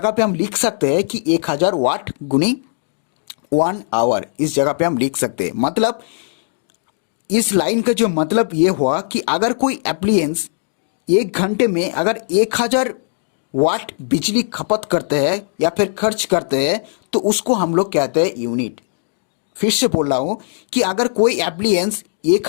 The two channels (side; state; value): right; silent; digital silence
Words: पे हम लिख सकते हैं कि 1000 वाट गुनी 1 आवर, इस जगह पे हम लिख सकते हैं। मतलब इस लाइन का जो मतलब ये हुआ कि अगर कोई एप्लियंस 1 घंटे में अगर 1000 वाट बिजली खपत करते हैं या फिर खर्च करते हैं तो उसको हम लोग कहते हैं यूनिट। फिर से बोल रहा हूं कि अगर कोई एप्लियंस